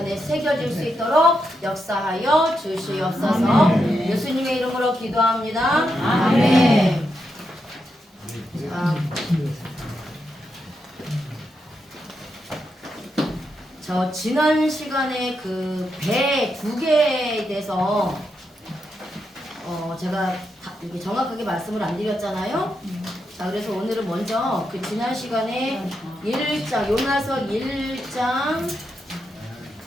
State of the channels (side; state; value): both; normal; correlation 0.84